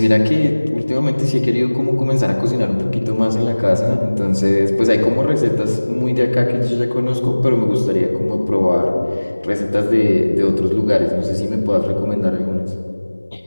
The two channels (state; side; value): inverted; both; correlation -1.00